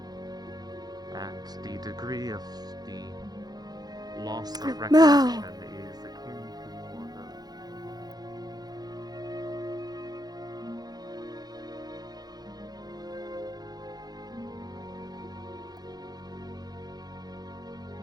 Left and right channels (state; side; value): late; left; 0.19 ms